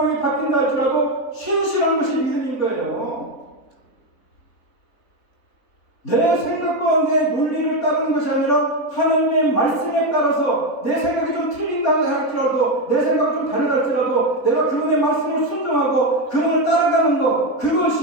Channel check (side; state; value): right; late; 3.9 ms